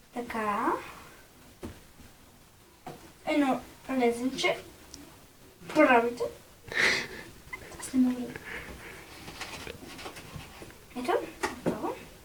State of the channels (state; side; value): identical; both; correlation 1.00